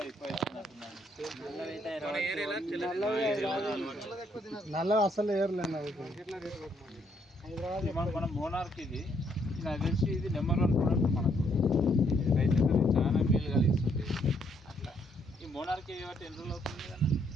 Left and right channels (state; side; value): normal; both; correlation 0.71